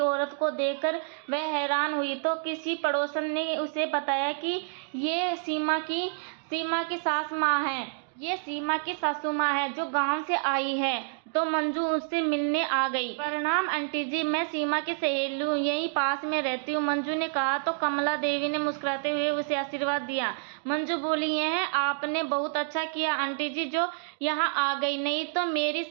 औरत को देखकर वह हैरान हुई तो किसी पड़ोसन ने उसे बताया कि ये सीमा की सासू माँ है जो गांव से आई है। तो मंजू उससे मिलने आ गई। प्रणाम आंटी जी, मैं सीमा की सहेली हूँ, यहीं पास में रहती हूँ, मंजू ने कहा। तो कमला देवी ने मुस्कुराते हुए उसे आशीर्वाद दिया। मंजू बोली, यह आपने बहुत अच्छा किया आंटी जी जो यहाँ आ गई, नहीं तो मेरी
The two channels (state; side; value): silent; left; digital silence